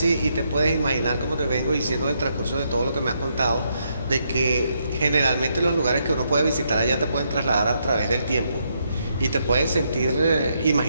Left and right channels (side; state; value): both; inverted; correlation -0.77